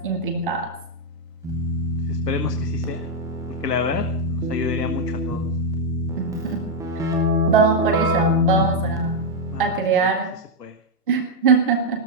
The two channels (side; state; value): both; normal; correlation -0.01